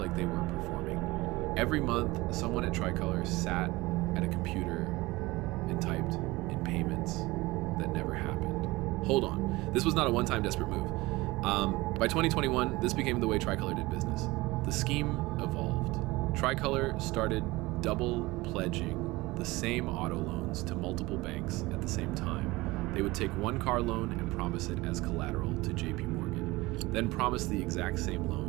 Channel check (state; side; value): quieter; left; 21.0 dB